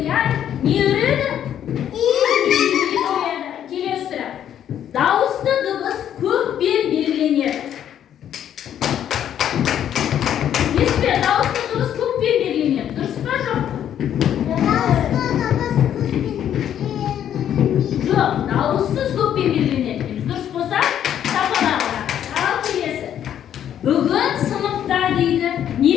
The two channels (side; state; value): right; quieter; 10.1 dB